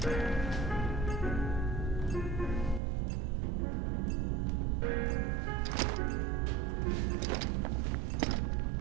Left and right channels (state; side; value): drops out; left; at 2.8 s